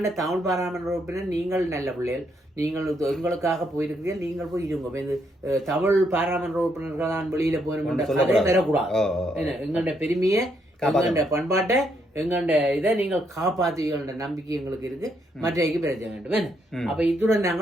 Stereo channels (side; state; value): both; normal; correlation 0.75